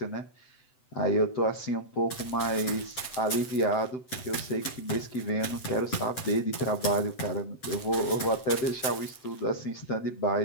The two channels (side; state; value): right; late; 7.9 ms